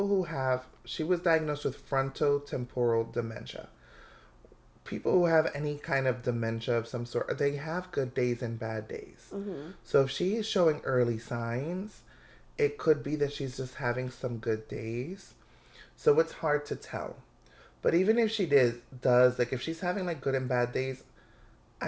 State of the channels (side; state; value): both; identical; correlation 1.00